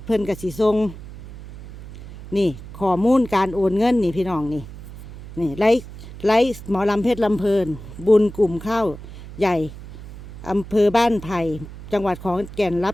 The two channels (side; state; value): right; noise; hum, 14 dB below the sound